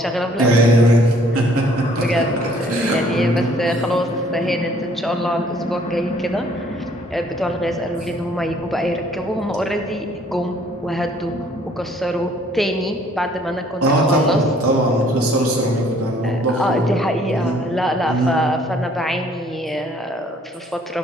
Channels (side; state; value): both; normal; correlation 0.60